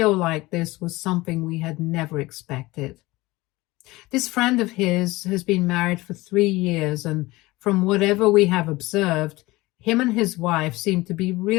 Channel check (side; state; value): right; quieter; 20.4 dB